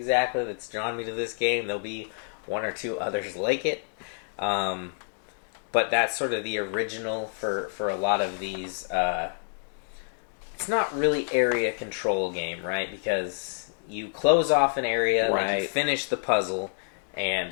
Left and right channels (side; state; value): right; silent; digital silence